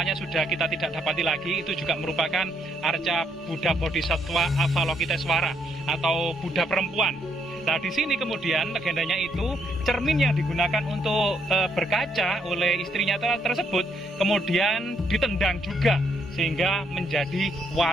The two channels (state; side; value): normal; both; correlation 0.73